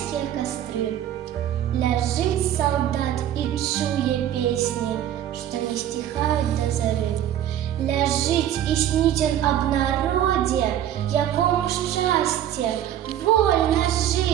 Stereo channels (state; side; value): quieter; left; 11.1 dB